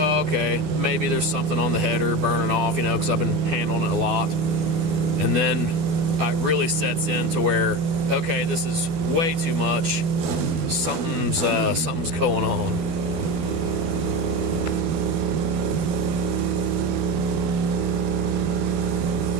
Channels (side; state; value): left; late; 12 ms